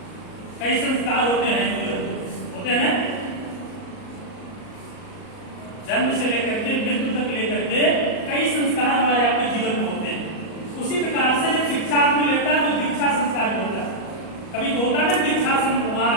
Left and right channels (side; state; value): right; late; 38 ms